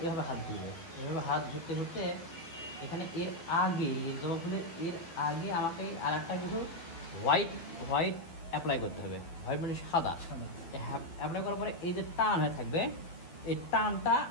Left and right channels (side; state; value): right; late; 12 ms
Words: এভাবে হাত ঘুরবে, এভাবে হাত ঘুরতে ঘুরতে এখানে এর আগে জবা ফুলের এর আগে আমাকে আর একটা কিছু হোয়াইট অ্যাপ্লাই করতে হবে। হোয়াইট মানে সাদা অ্যাপ্লাই করার পরে এই যে টান হয়ে থাকবে, এই টানটা